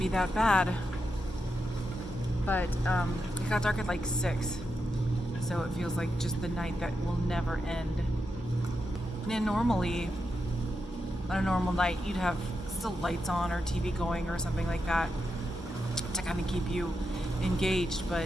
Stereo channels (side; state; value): right; noise; hum, 16 dB below the sound